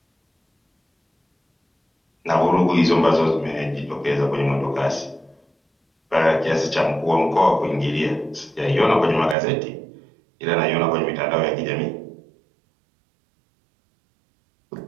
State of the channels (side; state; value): left; drops out; at 9.3 s